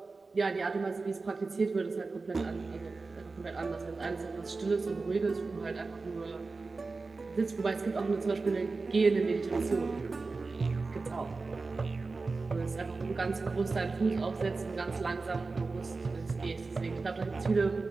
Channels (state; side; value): quieter; left; 3.9 dB